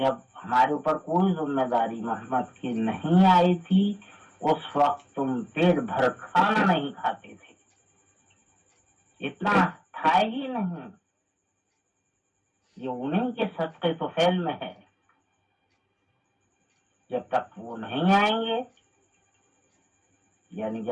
ہمارے اوپر کوئی ذمہ داری محمد کی نہیں آئی تھی، اس وقت تم پیٹ بھر کھانا نہیں کھاتے تھے، اتنا تھا ہی نہیں۔ یہ انہیں کے صدقے تو فعل میں ہے، جب تک وہ نہیں آئیں گے، یعنی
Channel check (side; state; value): both; identical; correlation 1.00